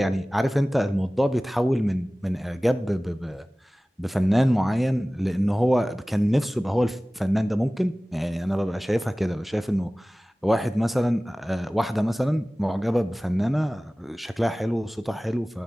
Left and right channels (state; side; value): normal; both; correlation 0.98